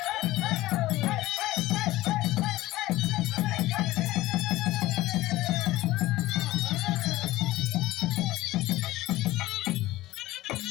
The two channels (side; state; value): right; quieter; 17.3 dB